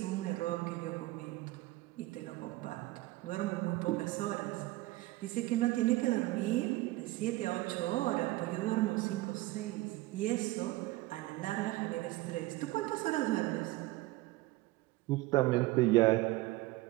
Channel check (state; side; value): quieter; left; 18.8 dB